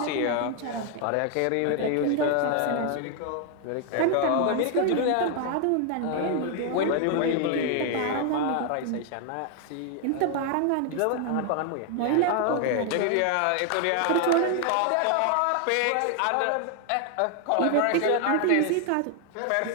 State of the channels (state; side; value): different; both; correlation 0.00